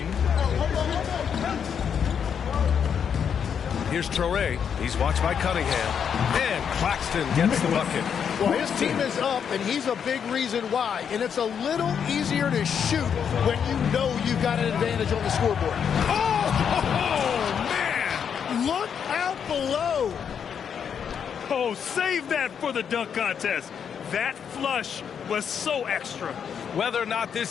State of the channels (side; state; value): right; quieter; 7.6 dB